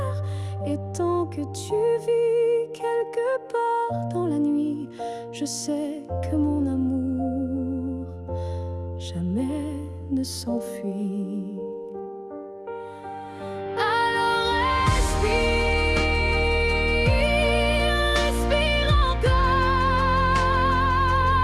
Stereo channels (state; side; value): identical; both; correlation 1.00